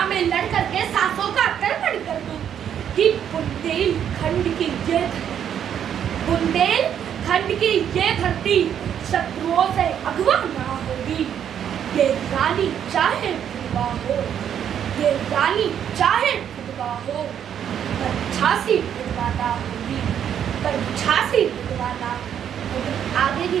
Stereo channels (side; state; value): left; quieter; 9.1 dB